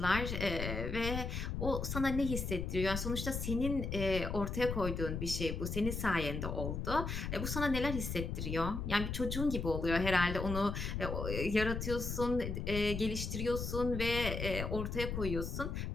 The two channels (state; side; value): noise; left; rumble, 3 dB below the sound